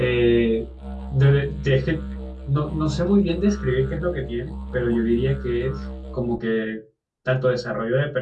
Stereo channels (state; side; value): identical; both; correlation 1.00